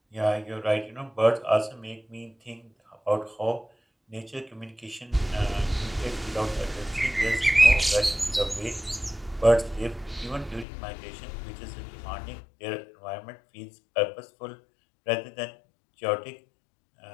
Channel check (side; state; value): right; drops out; at 10.7 s